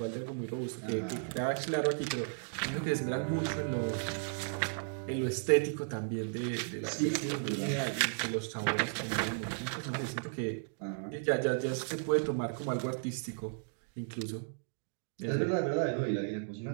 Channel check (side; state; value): left; silent; digital silence